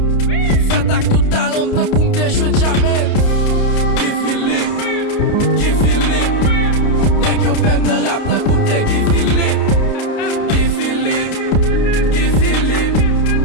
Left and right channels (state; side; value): late; right; 30 ms